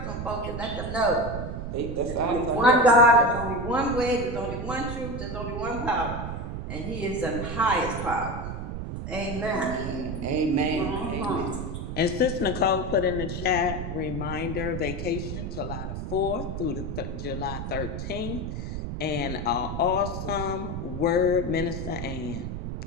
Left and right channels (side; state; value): right; noise; rumble, 5 dB below the sound